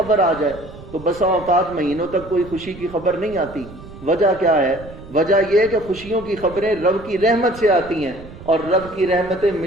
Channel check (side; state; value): right; noise; rumble, 17 dB below the sound